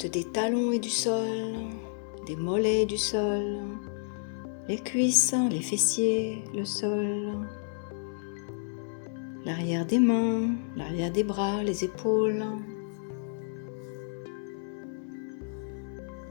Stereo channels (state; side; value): silent; right; digital silence